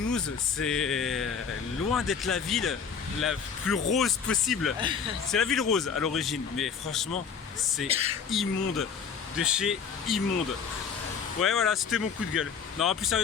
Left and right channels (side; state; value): right; quieter; 6.4 dB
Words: c'est loin d'être la ville la plus rose possible. C'est la ville rose à l'origine, mais franchement c'est immonde, de chez immonde. Ouais voilà, c'était mon coup de gueule. Non, plus